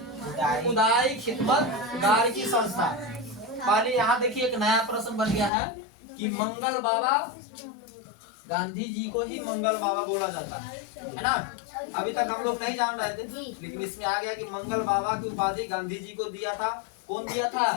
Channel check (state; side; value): drops out; right; at 5.5 s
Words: खुदाई खिदमत गार की संस्था। पहले यहाँ देखिए एक नया प्रश्न बन गया है कि मंगल बाबा, गांधी जी को ही मंगल बाबा बोला जाता है ना। अभी तक हम लोग नहीं जान रहे थे, लेकिन इसमें आ गया कि मंगल बाबा की उपाधि गांधी जी को दिया था। कौन दिया था,